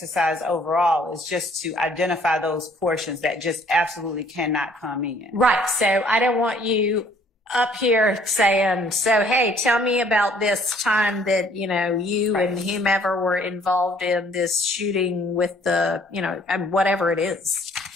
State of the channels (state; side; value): normal; both; correlation 0.60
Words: overall is just to identify those portions that just absolutely cannot come in. Right. So I don't want you up here saying, so, hey, tell me about this time that, you know, you and whomever were involved in this shooting with the, you know, whatever it is.